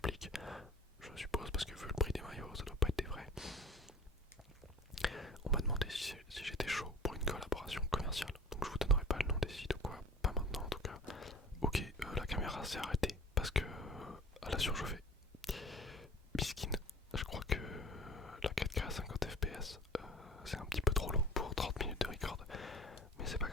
je suppose, parce que vu le prix des maillots, ça doit pas être des vrais. On m'a demandé si j'étais chaud pour une collaboration commerciale, donc je vous donnerai pas le nom des sites ou quoi, pas maintenant en tout cas. Ok, la caméra s'est arrêtée parce que elle a surchauffé. Biskin, je crois que la 4K à 50 fps c'est un petit peu trop long pour 30 minutes de record, mais c'est pas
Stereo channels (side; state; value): both; normal; correlation 0.43